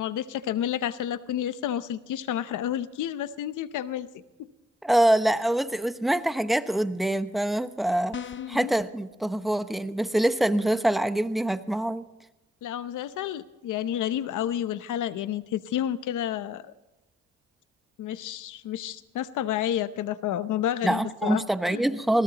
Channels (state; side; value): normal; both; correlation 0.69